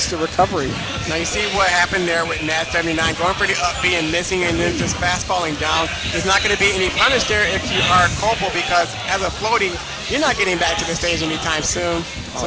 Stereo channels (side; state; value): both; identical; correlation 1.00